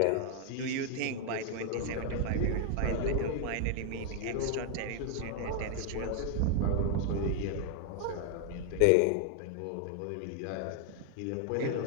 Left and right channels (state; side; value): different; both; correlation 0.00